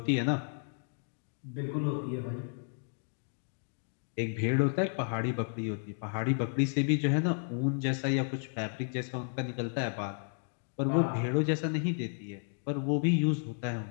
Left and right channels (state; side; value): silent; right; 56 dB below the other